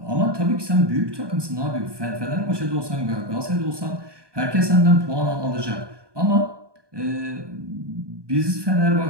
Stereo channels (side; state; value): left; late; 1.2 ms